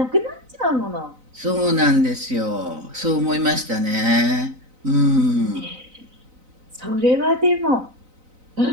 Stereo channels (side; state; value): left; late; 3.9 ms